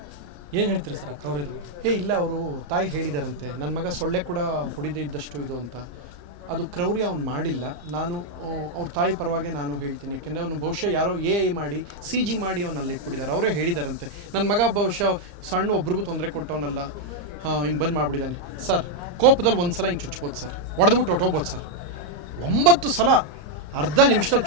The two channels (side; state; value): left; late; 34 ms